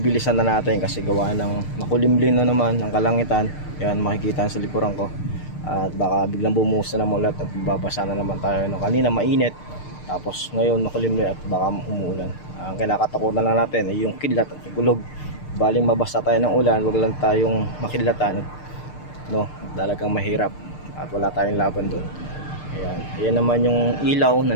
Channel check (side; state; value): right; late; 6.7 ms